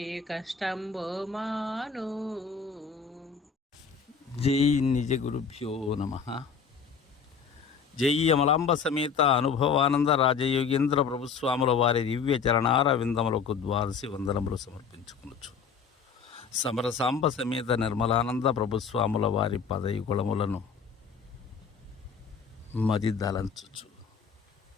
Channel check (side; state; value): right; quieter; 6.0 dB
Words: కష్టంబో మాను. జై నిజ గురుభ్యో నమః. జై అమలాంబ సమేత అనుభవానంద రాజయోగేంద్ర ప్రభుస్వాముల వారి దివ్య చరణార విందములకు ద్వాదశి వందనములు సమర్పించుకొనొచ్చు. సమరసాంబ సమేత నిర్మలానంద ప్రభుస్వాముల వారి పదయుగుళములను మది దలంచుచు